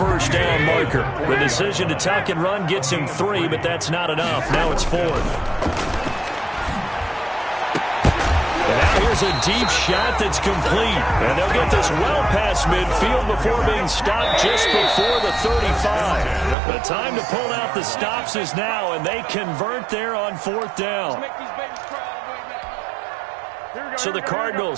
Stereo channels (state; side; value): drops out; left; at 16.6 s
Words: down marker. The decision to tuck and run gets him 3, but that's not enough. Now it's 4th. Here's a deep shot that's complete. And they'll get this well past midfield before being stopped just before the 35. The time to pull out the stops is now, and they convert there on 4th down. So the